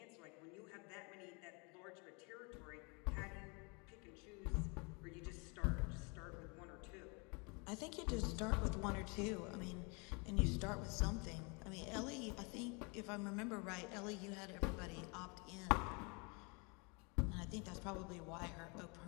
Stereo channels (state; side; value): quieter; right; 31.8 dB